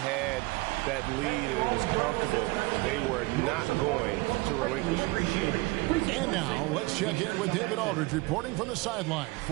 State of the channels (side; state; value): left; quieter; 23.0 dB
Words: that lead and it was comfortable, they were not going to relinquish it. And now let's check in with David Aldridge reporting from the sideline